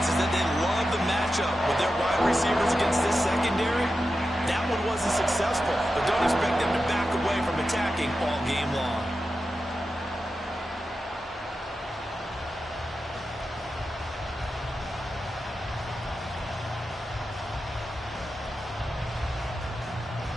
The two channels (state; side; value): normal; both; correlation 0.91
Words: is that they love the matchup with their wide receivers against this secondary. That one wasn't successful, but don't expect them to back away from attacking all game long.